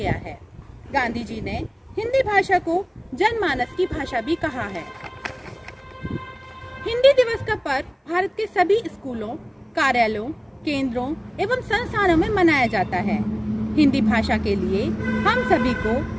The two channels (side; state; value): both; identical; correlation 1.00